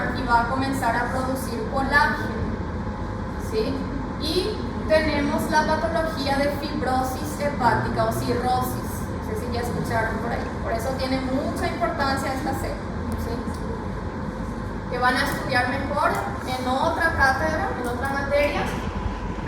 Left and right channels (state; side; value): identical; both; correlation 1.00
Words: y va a comenzar a producir colágeno, ¿sí? Y tenemos la patología de fibrosis hepática o cirrosis. No sé si ya escucharon por ahí. Por eso tiene mucha importancia esta célula, ¿sí? Que van a estudiar mejor en otra cátedra, en otra materia.